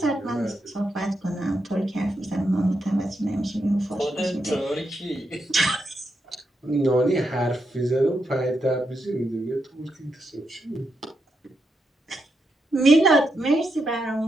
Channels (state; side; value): normal; both; correlation 0.83